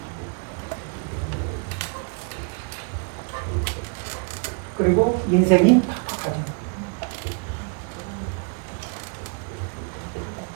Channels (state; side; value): quieter; left; 37.8 dB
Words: 그리고 인생이 팍팍하죠.